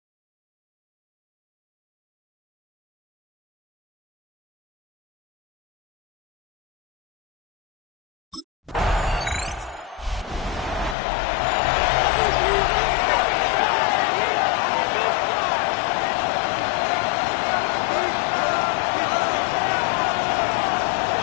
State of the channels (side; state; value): right; drops out; at 11.0 s